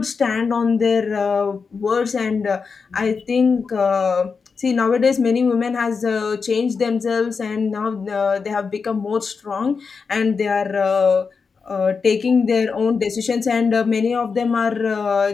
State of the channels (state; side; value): quieter; right; 5.2 dB